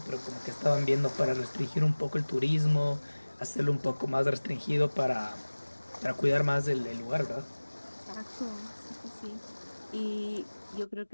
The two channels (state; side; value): inverted; both; correlation -1.00